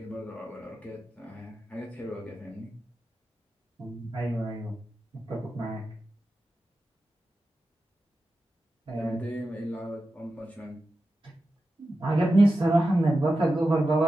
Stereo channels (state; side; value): normal; both; correlation 0.92